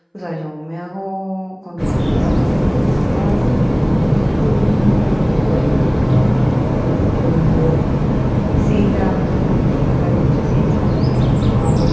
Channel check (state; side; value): identical; both; correlation 1.00